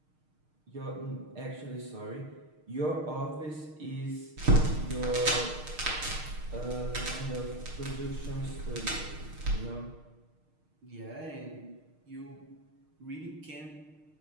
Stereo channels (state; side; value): late; left; 6.5 ms